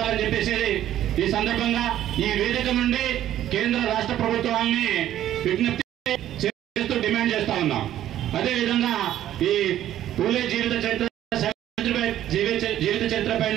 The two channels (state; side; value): quieter; left; 12.1 dB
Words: చెప్పేసి ఈ సందర్భంగా ఈ వేదిక నుండి కేంద్ర రాష్ట్ర ప్రభుత్వాన్ని విజ్ఞప్తి చేస్తూ డిమాండ్ చేస్తా ఉన్నాం. అదేవిధంగా ఈ పూలే జీవిత చరిత్ర